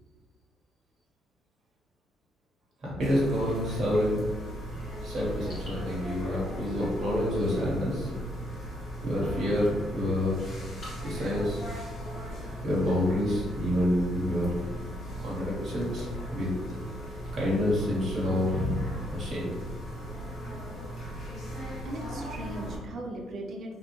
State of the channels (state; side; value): normal; both; correlation 0.74